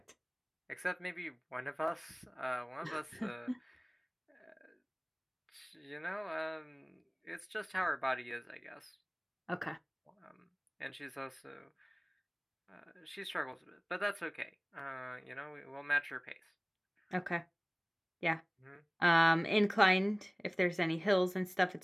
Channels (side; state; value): both; identical; correlation 1.00